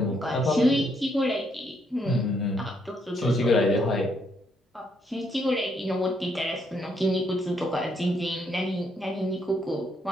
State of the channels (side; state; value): both; normal; correlation 0.73